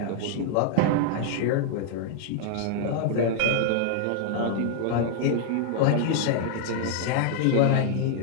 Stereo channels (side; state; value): both; different; correlation -0.01